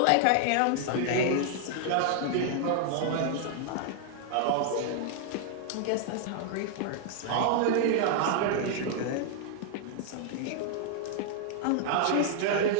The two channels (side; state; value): both; different; correlation 0.00